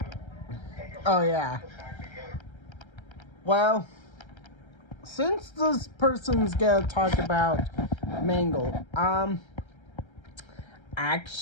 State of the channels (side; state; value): right; late; 1.3 ms